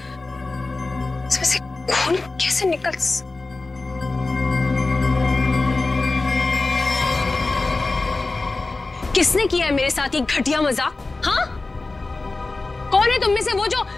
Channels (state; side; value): quieter; right; 3.4 dB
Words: खून कैसे निकल? किसने किया है मेरे साथ ये घटिया मजाक? हाँ, कौन है तुम में से वो जो